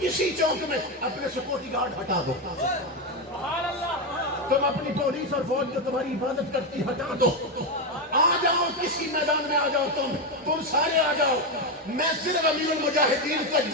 چوک میں اپنے سیکورٹی گارڈ ہٹا دو، تم اپنی پولیس اور فوج جو تمہاری حفاظت کرتی ہٹا دو، آ جاؤ کسی میدان میں، آ جاؤ تم سارے آ جاؤ، میں صرف امیر المجاہدین کا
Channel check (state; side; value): normal; both; correlation 0.09